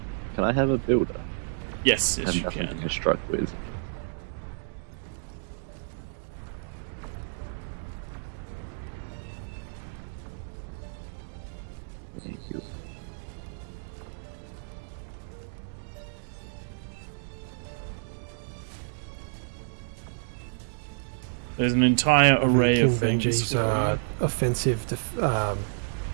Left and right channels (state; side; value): silent; left; digital silence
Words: Can I have a builder? Yes, yes, I have you nothing can. to construct with. Thank you. There's an entire array King of things. Benji's offensive